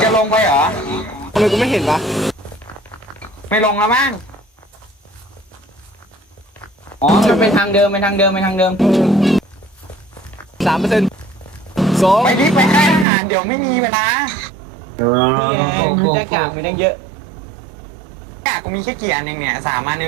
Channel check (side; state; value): left; drops out; at 13.1 s